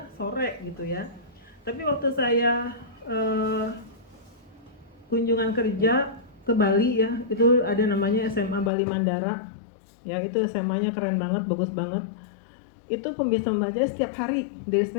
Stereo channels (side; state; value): right; drops out; at 8.7 s